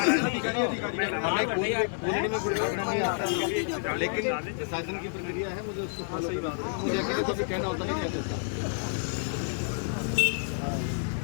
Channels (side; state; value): right; silent; digital silence